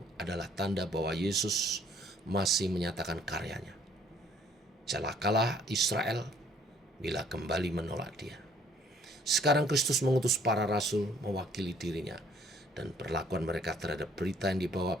adalah tanda bahwa Yesus masih menyatakan karyanya. Celakalah Israel bila kembali menolak dia. Sekarang Kristus mengutus para rasul mewakili dirinya, dan perlakuan mereka terhadap berita yang dibawa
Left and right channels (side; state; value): both; normal; correlation 0.60